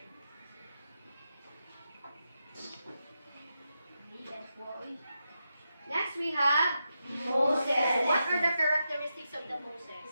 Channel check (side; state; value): both; inverted; correlation -0.87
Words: Next we have Moses. What are the characteristics of the Moses?